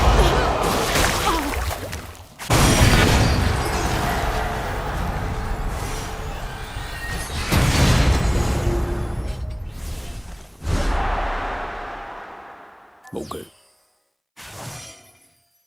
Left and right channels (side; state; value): both; identical; correlation 1.00